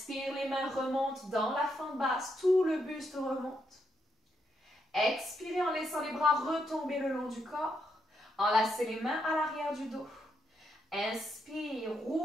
les mains remontent dans la fente basse, tout le buste remonte. Expirez en laissant les bras retomber le long du corps. Enlacez les mains à l'arrière du dos. Inspire,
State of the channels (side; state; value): both; normal; correlation 0.79